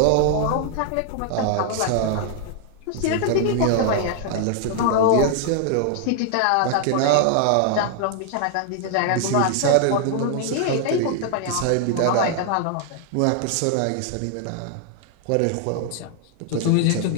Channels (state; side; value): different; both; correlation -0.01